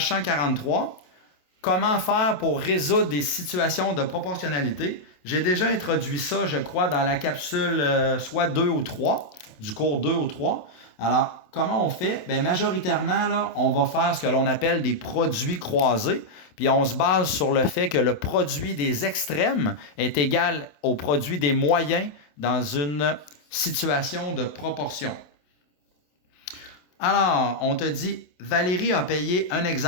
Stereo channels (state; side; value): late; right; 27 ms